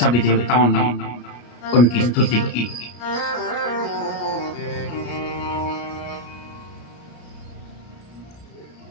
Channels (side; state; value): right; late; 33 ms